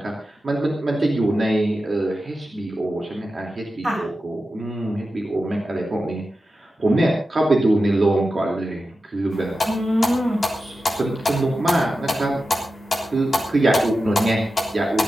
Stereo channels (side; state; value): both; normal; correlation 0.92